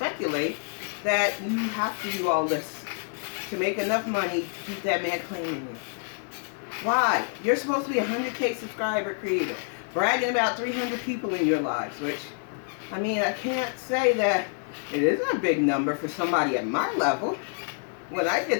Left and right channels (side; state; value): right; silent; 60 dB below the other